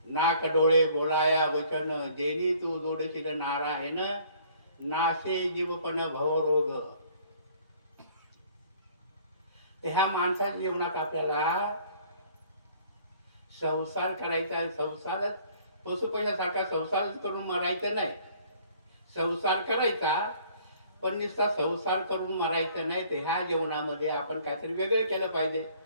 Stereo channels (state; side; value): inverted; both; correlation -0.56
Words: नाक डोळे बोलाया वचन, जेनी तू जोडशील नारायण नाशे जीवपण भवरोग. ह्या माणसाच्या जीवनात आपल्याला संसार करायचा आहे. संसारच पशुपैशासारखा संसारच करून मरायचं नाही. संसार करायचा पण नुसता संसार करून मरायचं नाही. तर ह्या जीवनामध्ये आपण काहीतरी वेगळं केलं पाहिजे.